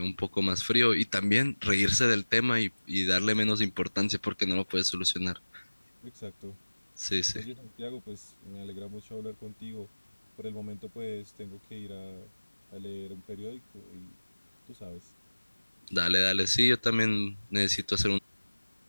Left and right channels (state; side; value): inverted; both; correlation -1.00